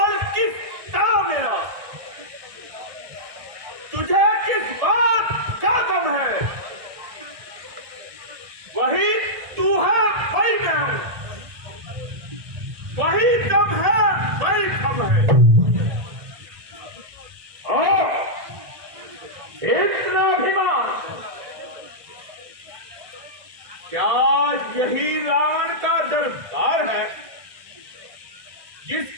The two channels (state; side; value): late; left; 1.6 ms